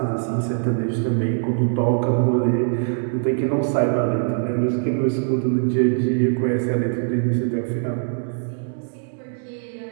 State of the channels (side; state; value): left; silent; 64 dB below the other